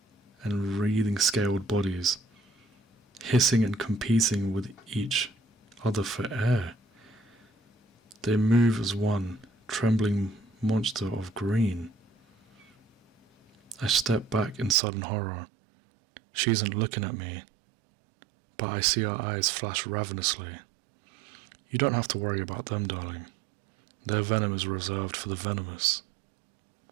and wreathing scaled bodies, hissing and competing with each other for air. They move as one trembling monster of green. I step back in sudden horror. She isn't looking at me, but I see her eyes flash ravenously. You don't have to worry about them, darling. Their venom is reserved for the venomous.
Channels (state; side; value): drops out; left; at 14.8 s